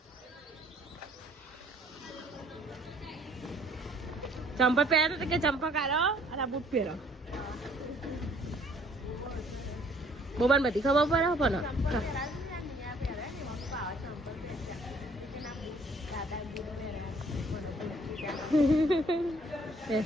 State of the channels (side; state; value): both; normal; correlation 0.60